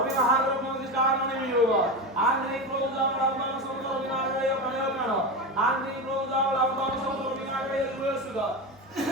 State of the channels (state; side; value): normal; both; correlation 0.20